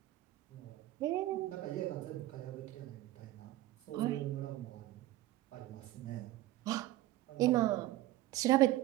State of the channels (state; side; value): quieter; left; 15.7 dB